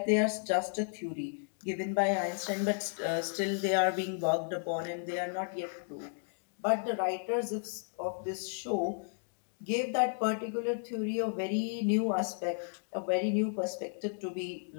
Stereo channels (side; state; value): right; silent; 55 dB below the other